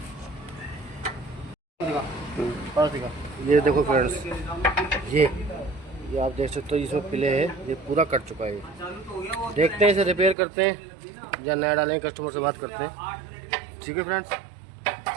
पास दिखा। ये देखो फ्रेंड्स, ये आप देख सकते हो इसमें पिले है, ये पूरा कट चुका है। देखते हैं इसे रिपेयर करते हैं या नया डालेंगे, कस्टमर से बात करते हैं। ठीक है फ्रेंड्स,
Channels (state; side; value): drops out; left; at 10.4 s